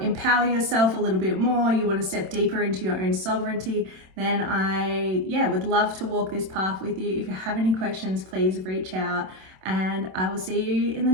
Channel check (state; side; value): late; left; 27 ms